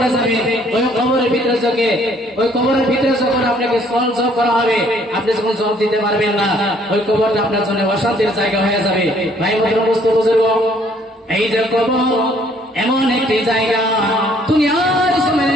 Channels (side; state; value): both; normal; correlation 0.63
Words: যাবে ওই কবরের ভিতরে যখন আপনাকে জব করা হবে, আপনি যখন জব দিতে পারবেন না, ওই কবরটা আপনার জন্য অশান্তির জায়গা হয়ে যাবে। ভাই বুজুর্গ, এই যে কবর এমন একটি জায়গা, দুনিয়ার